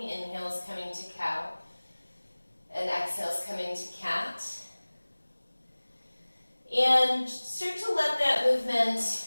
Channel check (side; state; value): both; inverted; correlation -1.00